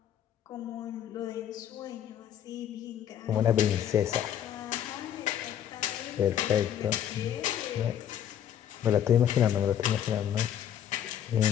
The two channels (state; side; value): quieter; right; 10.1 dB